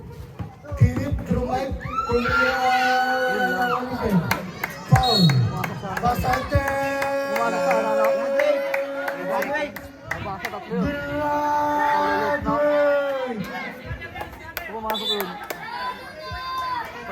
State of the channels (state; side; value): identical; both; correlation 1.00